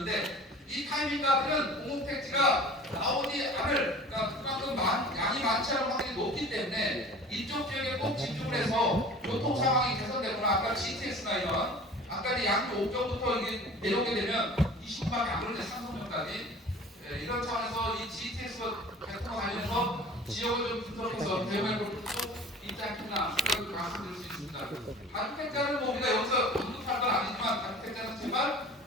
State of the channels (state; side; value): normal; both; correlation 0.42